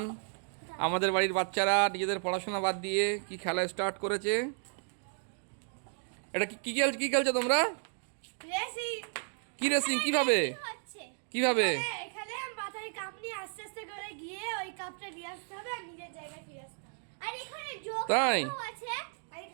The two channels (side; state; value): left; silent; 55 dB below the other